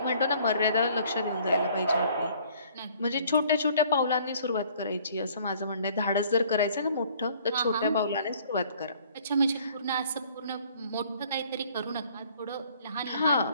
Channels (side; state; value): both; inverted; correlation -0.58